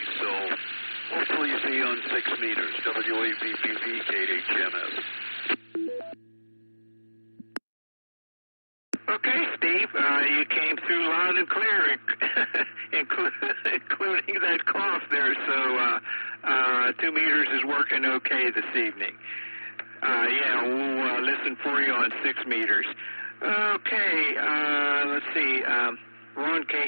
So hopefully see you on 6 meters. W8VPV, KHMS. Okay, Steve, you came through loud and clear, including that cough there. So 2 meters is working okay this evening. We'll listen for you on 6 meters. Okay, let's see. Ron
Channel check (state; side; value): inverted; both; correlation -1.00